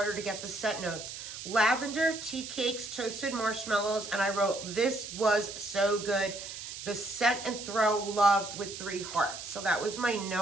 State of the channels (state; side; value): noise; right; hiss, 9 dB below the sound